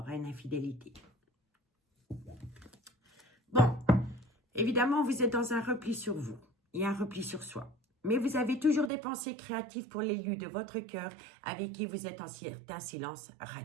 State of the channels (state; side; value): drops out; left; at 8.9 s